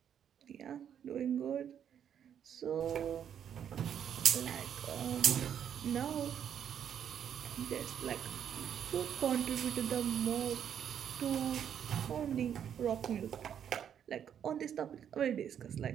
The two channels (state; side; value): quieter; left; 8.9 dB